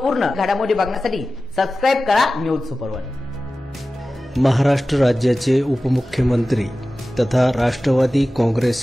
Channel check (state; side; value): normal; both; correlation 0.96